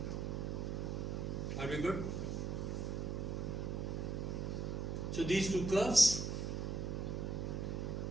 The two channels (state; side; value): noise; right; hum, 1 dB below the sound